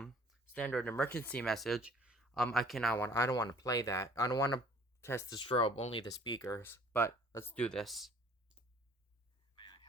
emergency message, I don't want to play that. I don't want to test the strobe, only the speakers. But let's do this. May I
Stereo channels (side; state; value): both; normal; correlation 0.54